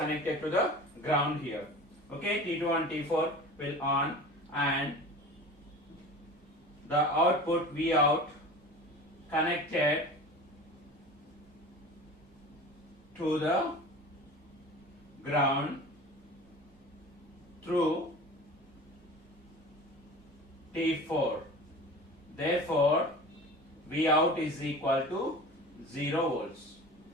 to the ground here. Okay, T2 and T4 will on, and the output V out connected to the ground through T4. Therefore, V out is equal to 0 volts.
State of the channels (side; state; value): both; normal; correlation 0.37